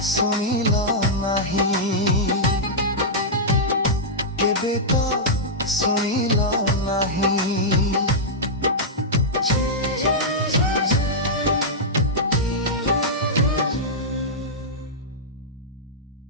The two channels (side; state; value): both; normal; correlation -0.09